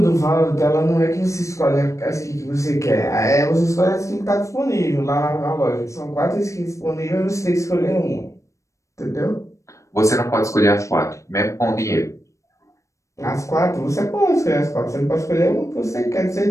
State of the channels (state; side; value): late; right; 0.15 ms